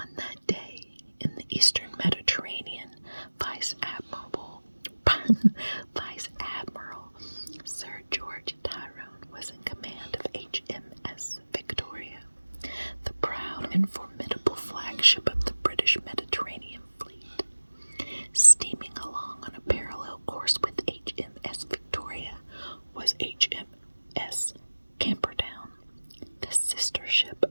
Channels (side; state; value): both; inverted; correlation -1.00